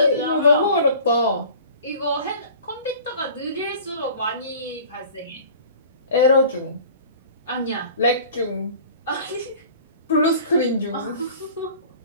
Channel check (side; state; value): both; inverted; correlation -0.44